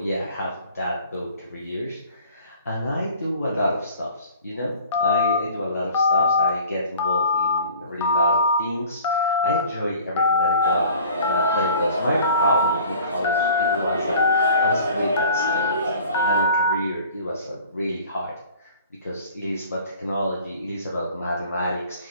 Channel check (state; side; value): inverted; both; correlation -0.48